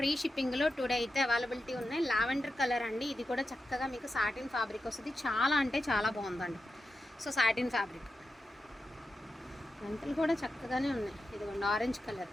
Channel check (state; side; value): normal; both; correlation 0.90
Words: షిప్పింగ్లో టుడే అయితే అవైలబిలిటీ ఉన్నాయి. లావెండర్ కలర్ అండి, ఇది కూడా చక్కగా మీకు సాటిన్ ఫ్యాబ్రిక్ వస్తుంది. చాలా అంటే చాలా బాగుందండి. సో సాటిన్ ఫ్యాబ్రిక్ గంటలు కూడా చక్కగానే ఉన్నాయి. ఇదిగోండి ఆరెంజ్ కలర్,